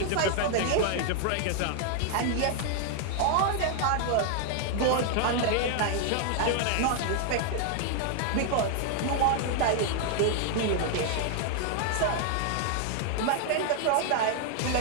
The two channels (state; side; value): different; both; correlation 0.00